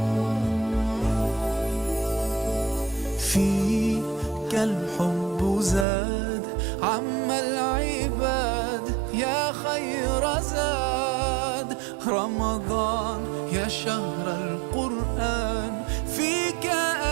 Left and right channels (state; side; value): drops out; left; at 5.9 s